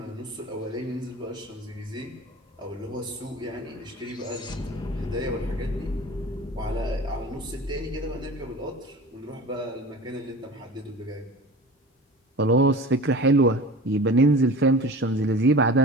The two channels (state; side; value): normal; both; correlation 0.37